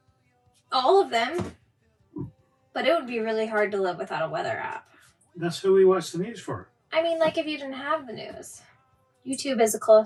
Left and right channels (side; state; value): both; identical; correlation 1.00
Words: all of them. But it would be really hard to live without a weather app. That's who we watch the news for. I mean, like if you didn't have the news. YouTube is a